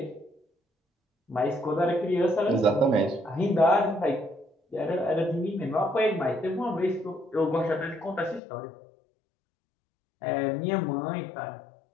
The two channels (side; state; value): right; drops out; at 8.4 s